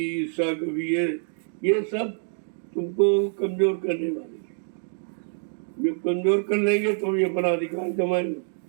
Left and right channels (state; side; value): silent; left; 61 dB below the other